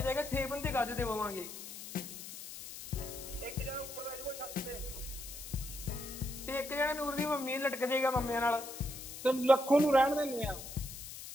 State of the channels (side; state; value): left; noise; hiss, 11 dB below the sound